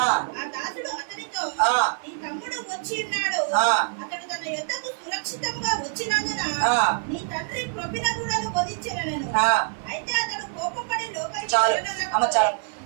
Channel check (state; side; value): silent; left; digital silence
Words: చాలు అమ్మ చాలు.